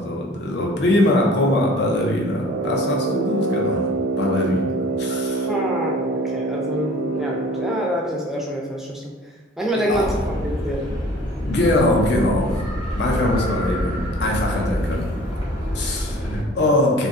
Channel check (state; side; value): normal; both; correlation 0.47